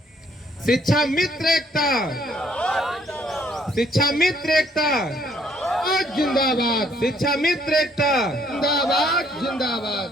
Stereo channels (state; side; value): normal; both; correlation 0.65